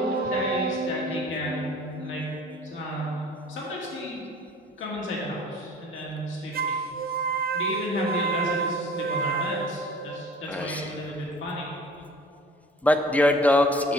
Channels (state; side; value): normal; both; correlation 0.46